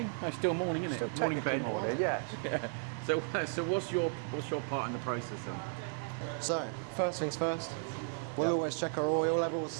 No, still morning, isn't it? Morning, Ben. Morning, yes. So what's your part in the process then? So, first things first, we'll always check our oil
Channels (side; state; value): left; silent; 55 dB below the other